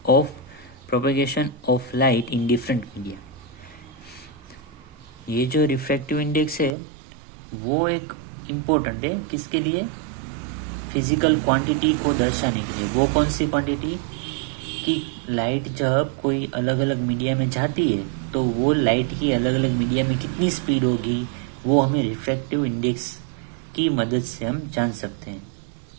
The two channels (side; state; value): left; drops out; at 6.8 s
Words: of propagation of light in different media. ये जो refractive index है वो एक important है किसके लिए? फिजिकल क्वांटिटी को दर्शाने के लिए. वो कौन सी क्वांटिटी? कि लाइट जब कोई अलग अलग मीडिया में जाती है तो वो लाइट की अलग अलग मीडिया में कितनी स्पीड होगी वो हमें रिफ्रैक्टिव इंडेक्स की मदद से हम जान सकते हैं.